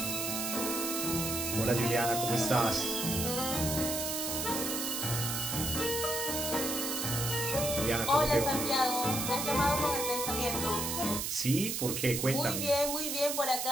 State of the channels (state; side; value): noise; right; hiss, 2 dB below the sound